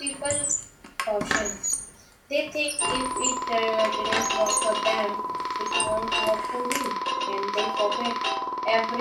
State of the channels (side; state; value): both; identical; correlation 1.00